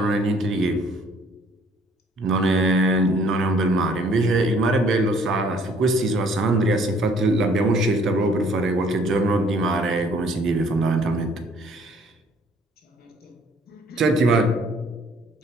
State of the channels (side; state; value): both; normal; correlation 0.60